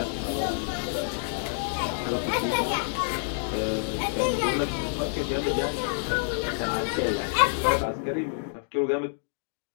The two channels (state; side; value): silent; right; digital silence